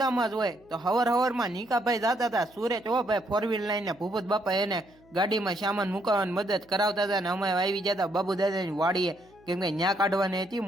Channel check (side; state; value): right; noise; hum, 29 dB below the sound